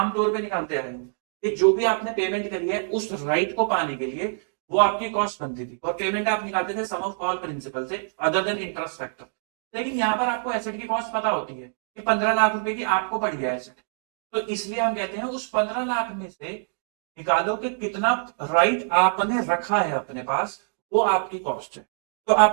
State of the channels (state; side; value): silent; left; digital silence